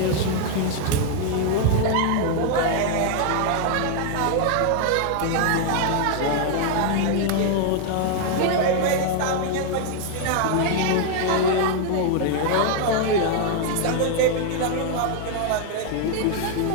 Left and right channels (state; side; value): different; both; correlation 0.00